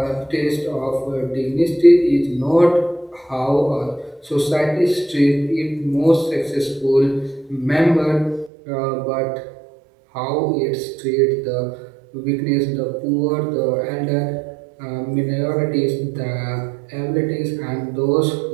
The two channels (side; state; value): left; drops out; at 8.5 s